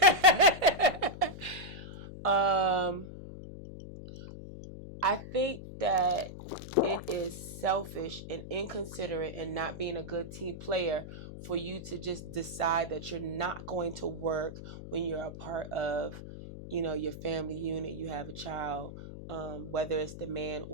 that. um, I think that it is selfish and inconsiderate and not being a good team player for you to just decide that you're not going to work when you're a part of, your family unit. You have a child, whether it's the man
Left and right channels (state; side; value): noise; left; hum, 11 dB below the sound